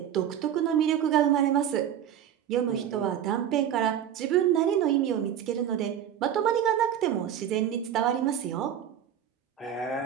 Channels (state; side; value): quieter; left; 9.9 dB